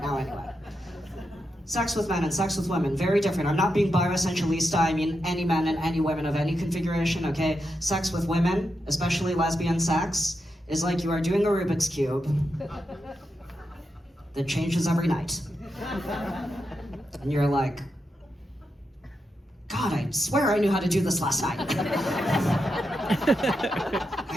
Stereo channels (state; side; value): normal; both; correlation 0.86